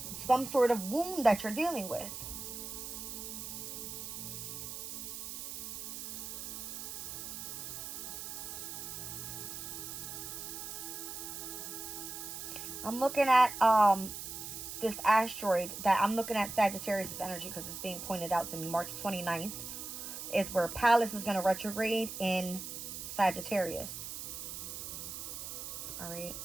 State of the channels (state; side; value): noise; right; hiss, 7 dB below the sound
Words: some sort of wound that you're dealing with. I'm looking at this asteroid that I'm looking at Sagittarius energy, because it's being pointed out to me. March 29th is where Pallas is going to retrograde in Sagittarius. All right.